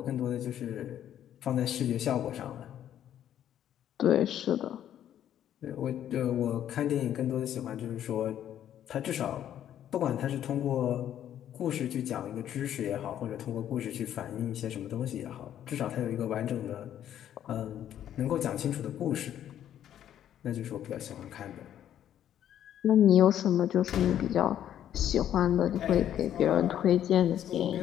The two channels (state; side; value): quieter; right; 10.7 dB